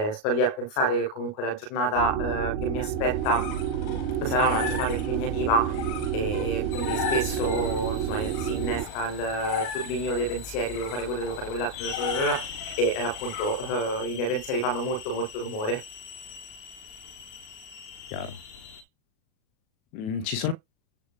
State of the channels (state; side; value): late; right; 37 ms